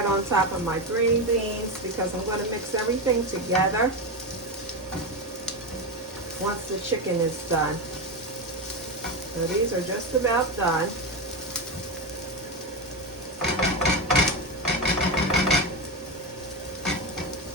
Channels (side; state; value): both; normal; correlation 0.15